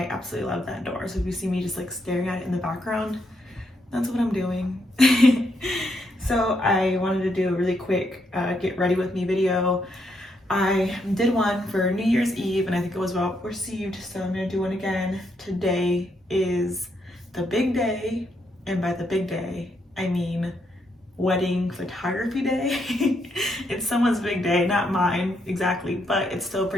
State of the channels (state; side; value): normal; both; correlation 0.77